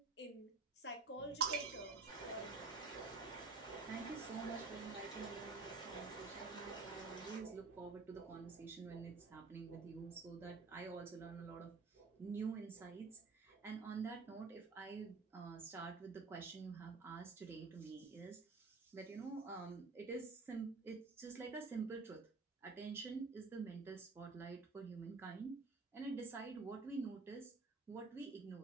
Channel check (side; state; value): left; quieter; 4.0 dB